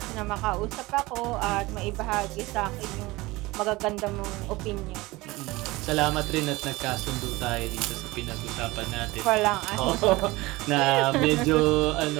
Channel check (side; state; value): left; quieter; 21.0 dB